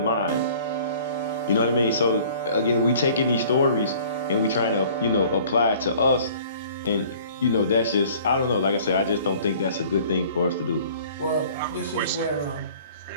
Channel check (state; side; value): inverted; both; correlation -0.51